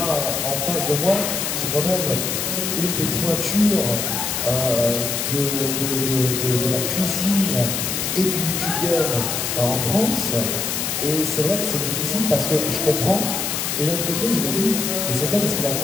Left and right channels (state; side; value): noise; left; hiss, 1 dB below the sound